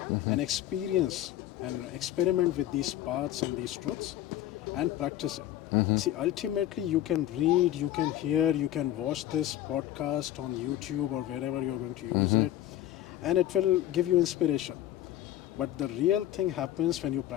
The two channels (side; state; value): right; quieter; 13.1 dB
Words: and experience and experiment with these paths and these truths and practice it. See, ultimately you can read, you can hear, you can watch this podcast on YouTube or wherever you're going to use it, and it will give you inspiration. But the real thing happens when you